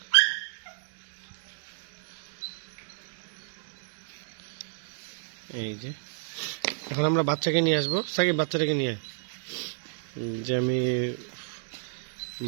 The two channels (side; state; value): left; silent; 57 dB below the other